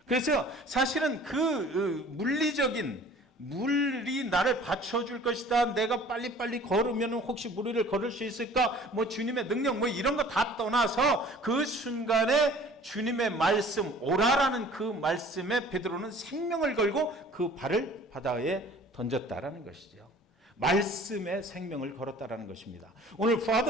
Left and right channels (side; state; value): both; normal; correlation 0.49